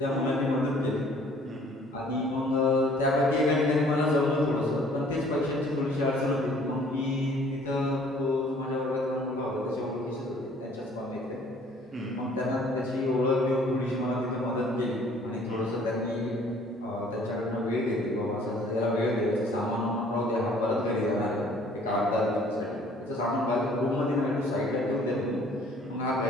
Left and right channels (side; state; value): both; normal; correlation 0.56